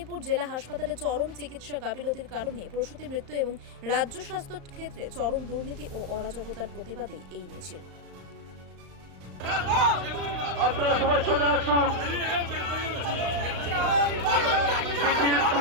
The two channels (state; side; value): late; left; 35 ms